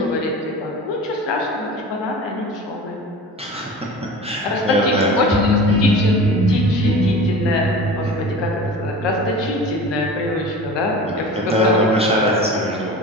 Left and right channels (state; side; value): normal; both; correlation 0.36